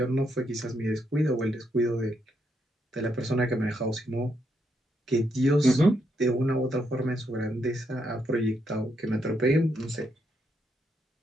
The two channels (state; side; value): normal; both; correlation 0.78